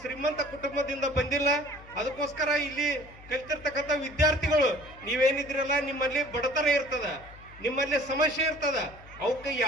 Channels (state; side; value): noise; left; hum, 20 dB below the sound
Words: ಶ್ರೀಮಂತ ಕುಟುಂಬದಿಂದ ಬಂದಿಲ್ಲ. ಅದಕ್ಕೋಸ್ಕರ ಇಲ್ಲಿ ಕಲ್ತಿರ್ತಕ್ಕಂಥ ವಿದ್ಯಾರ್ಥಿಗಳು ನೀವೇನಿದ್ರಲ್ಲ, ನಿಮ್ಮಲ್ಲಿ ಬಡತನ ಇರ್ತದ, ನಿಮ್ಮಲ್ಲಿ ಸಮಸ್ಯೆ ಇರ್ತದ, ಅವಕ್ಕೆ